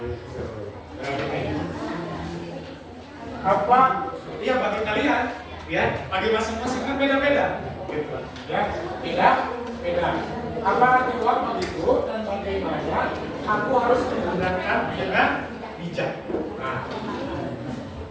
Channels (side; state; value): both; identical; correlation 1.00